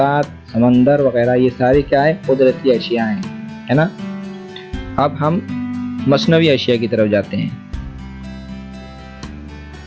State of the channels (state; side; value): identical; both; correlation 1.00